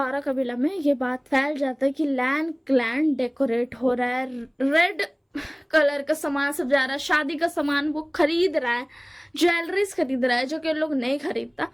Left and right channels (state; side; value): identical; both; correlation 1.00